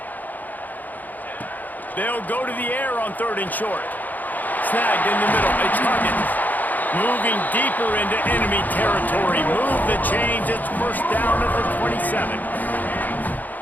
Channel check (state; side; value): late; right; 0.083 ms